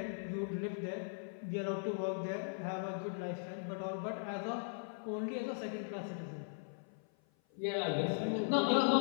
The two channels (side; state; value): right; silent; 52 dB below the other